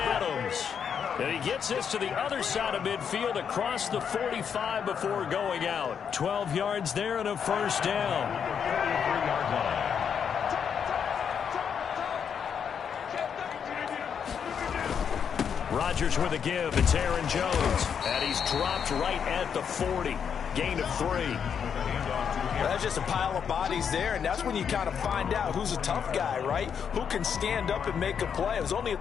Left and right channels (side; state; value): right; quieter; 7.4 dB